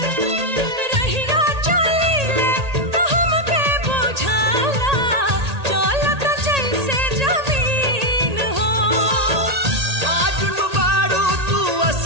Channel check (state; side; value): late; left; 1.8 ms